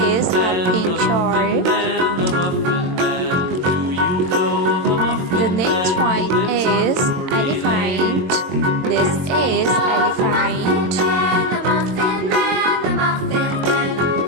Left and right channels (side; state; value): left; late; 22 ms